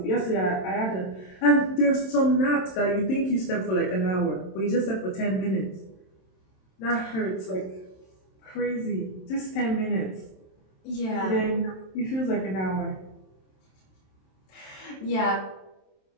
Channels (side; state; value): right; late; 27 ms